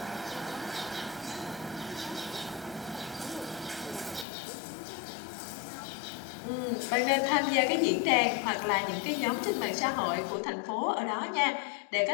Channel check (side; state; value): right; drops out; at 4.2 s